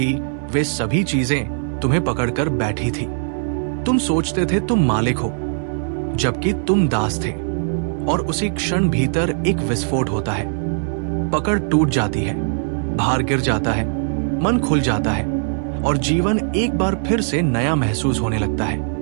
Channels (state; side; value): silent; left; 66 dB below the other